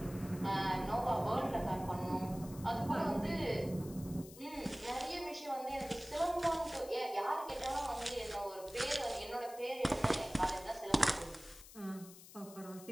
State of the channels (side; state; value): left; noise; hiss, 17 dB below the sound